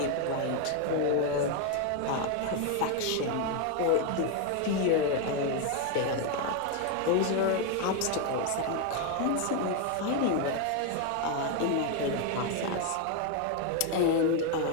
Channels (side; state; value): both; different; correlation 0.01